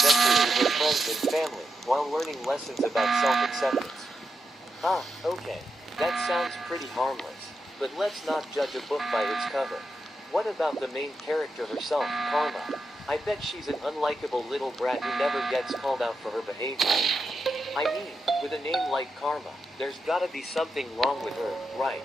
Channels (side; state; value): both; normal; correlation 0.86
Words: with her friends and family, while learning lessons about self-acceptance. Okay, that sounds pretty harmless, but let's not judge a book by its cover. What about the main character herself, Karma? I bet she's an unlikable little brat who never gets called out for her behavior. I mean, with a name like Karma, there's gotta be something wrong with her, right?